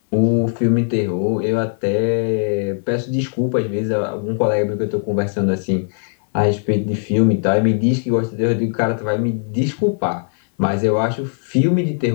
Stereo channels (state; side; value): silent; right; 62 dB below the other